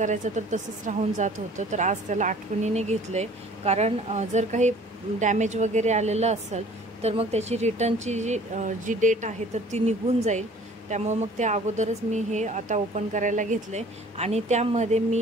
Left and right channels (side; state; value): both; normal; correlation 0.51